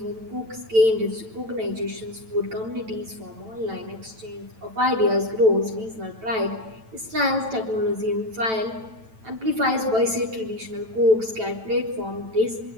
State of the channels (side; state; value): left; late; 9.0 ms